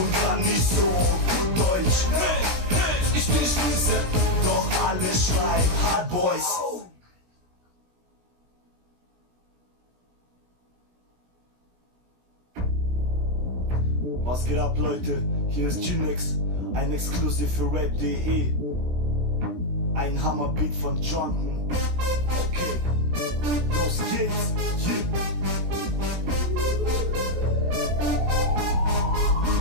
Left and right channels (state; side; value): late; left; 17 ms